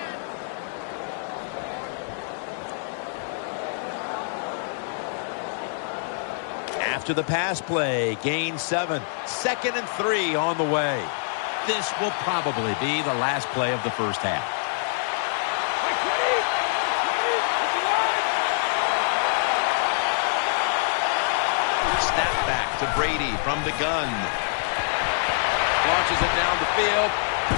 After the pass play, gain 7. 2nd and 3 on the way. This will probably be the last play of the first half. Snap back to Brady from the gun. Launches it down the field.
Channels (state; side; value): silent; right; digital silence